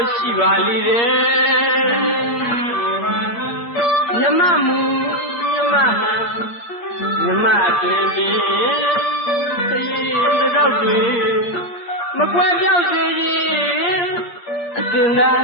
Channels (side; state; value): right; late; 8.6 ms